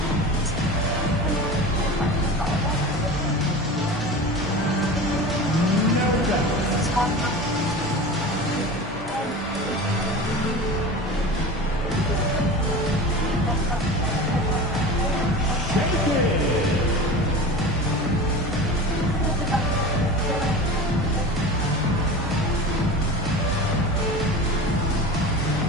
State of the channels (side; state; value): both; normal; correlation 0.32